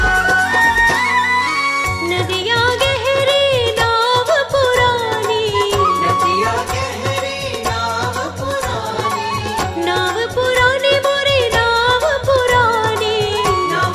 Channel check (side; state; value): both; identical; correlation 1.00